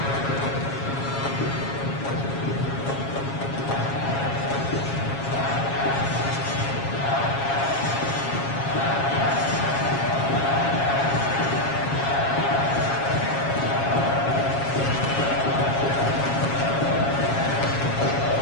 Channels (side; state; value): right; late; 7.3 ms